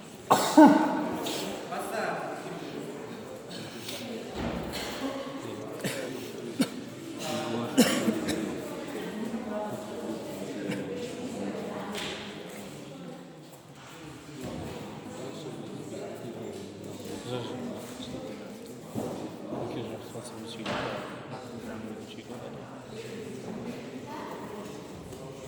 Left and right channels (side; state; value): both; identical; correlation 1.00